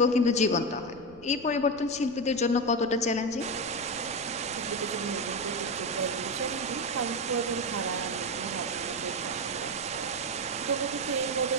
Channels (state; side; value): noise; left; rumble, 22 dB below the sound